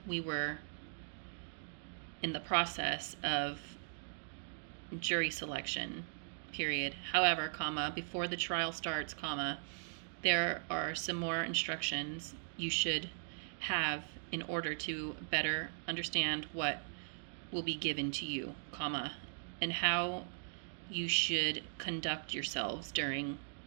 we were in the process of jury selection, period. However, comma, before the trial starts, comma, there are some more instructions you should have in order to better understand what will be given to you, comma, and how you should conduct yourselves during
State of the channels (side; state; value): left; silent; digital silence